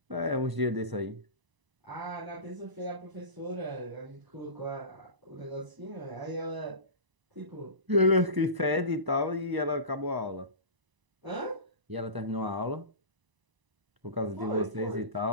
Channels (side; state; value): left; late; 1.0 ms